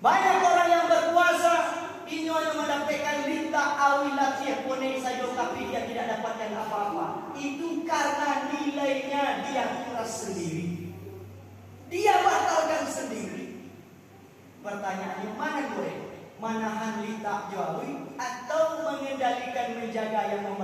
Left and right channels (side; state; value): both; identical; correlation 1.00